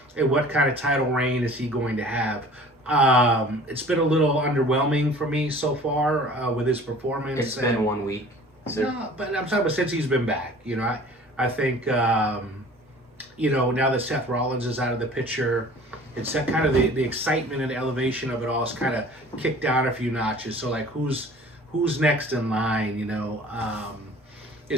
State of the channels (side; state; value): both; normal; correlation 0.47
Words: and what kind of title reign is he going to have? It's been a little underwhelming for me so far with his performance. It's been 1 week. So. No, but I'm talking about since he's been back. I think now that Seth Rollins is out of the picture, it's that kind of the excitement and the elevation of it all is kind of kicked down a few notches. So like who's next in line?